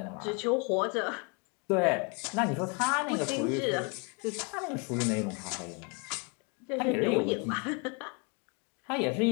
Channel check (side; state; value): right; quieter; 32.3 dB